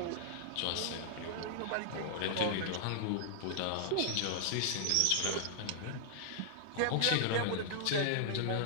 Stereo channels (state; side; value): different; both; correlation -0.01